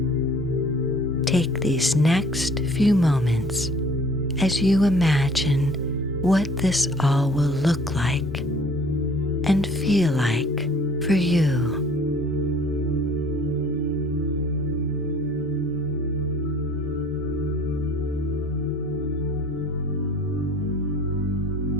Take these next few moments as you imagine what this all will look like and feel like for you.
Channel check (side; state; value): both; normal; correlation 0.52